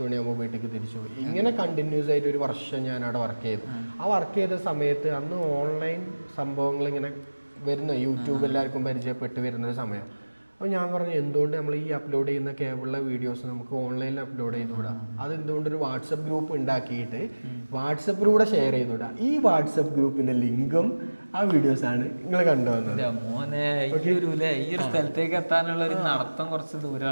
മണിയാകുമ്പോൾ വീട്ടിലേക്ക് തിരിച്ചു പോകും. ഇങ്ങനെ കണ്ടിന്യൂസ് ആയിട്ട് ഒരു വർഷം ഞാൻ അവിടെ വർക്ക് ചെയ്തു. ആ വർക്ക് ചെയ്ത സമയത്ത് അന്ന് ഓൺലൈൻ സംഭവങ്ങൾ ഇങ്ങനെ വരുന്ന, യൂട്യൂബ് എല്ലാവർക്കും പരിചയപ്പെട്ട് വരുന്നൊരു സമയം. അപ്പോൾ ഞാൻ പറഞ്ഞു, എന്തുകൊണ്ട് നമ്മൾ ഈ അപ്ലോഡ് ചെയ്യുന്ന കേബിളിലെ വീഡിയോസ് നമുക്ക് ഓൺലൈനിൽ അപ്ലോഡ് ചെയ്തുകൂടാ? അതെന്തുകൊണ്ടൊരു വാട്സപ്പ് ഗ്രൂപ്പ് ഉണ്ടാക്കിയിട്ട് വാട്സപ്പിലൂടെ ഷെയർ ചെയ്തുകൂടാ? ഈ വാട്സപ്പ് ഗ്രൂപ്പിന്റെ ലിങ്കും ആ വീഡിയോസാണ് നിങ്ങൾ കണ്ടുവന്നത്. സ്ഥലത്തേക്ക് എത്താനുള്ള ഒരു നടത്തം കുറച്ച്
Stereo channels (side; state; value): both; inverted; correlation -1.00